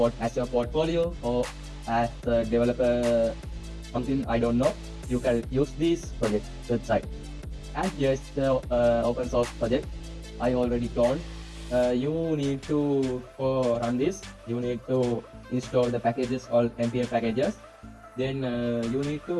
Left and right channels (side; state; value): both; identical; correlation 1.00